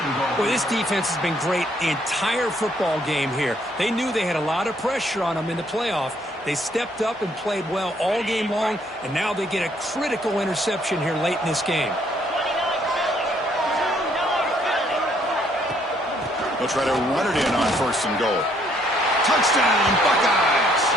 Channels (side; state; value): both; normal; correlation 0.67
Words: Boy, this defense has been great the entire football game here. They knew they had a lot of pressure on them in the playoff, They stepped up and played well all game long, and now they get a critical interception here late in this game. They'll try to run it in on 1st and goal. Touchdown, Buckeyes!